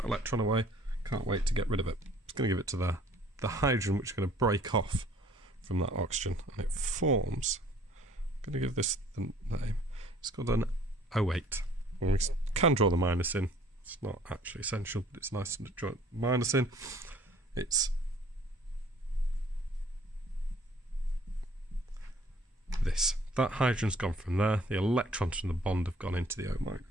electron away, can't wait to get rid of it. It's going to give it to the hydrogen, which is going to break off from that oxygen, and it forms, I'm going to give this the name, it's called an O8. And we can draw the minus in, it's not actually essential, but it's nice to draw minus in. It's this. That hydrogen's gone from there, the electrons from the bond have gone into the O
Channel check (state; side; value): normal; both; correlation 0.55